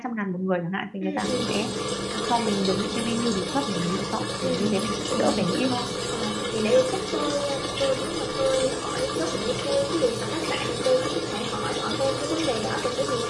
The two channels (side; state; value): both; identical; correlation 1.00